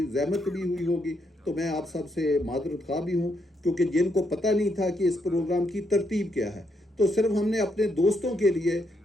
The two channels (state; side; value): normal; both; correlation 0.77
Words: जहमत भी हुई होगी। तो मैं आप सब से माज़रत ख़्वाह भी हूँ, क्योंकि जिनको पता नहीं था कि इस प्रोग्राम की तरतीब क्या है। तो सिर्फ हमने अपने दोस्तों के लिए